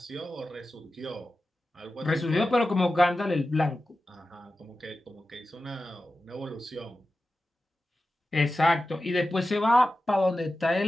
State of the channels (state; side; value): normal; both; correlation 0.93